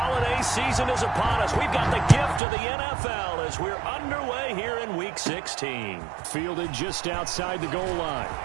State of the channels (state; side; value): drops out; left; at 2.4 s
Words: season is upon us. We've got the gift of the NFL as we're underway here in Week 16. Fielded just outside the goal line.